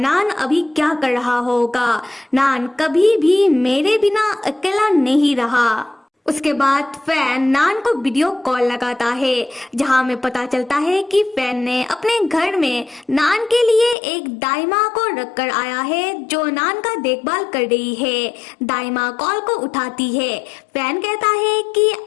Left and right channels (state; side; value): drops out; right; at 14.0 s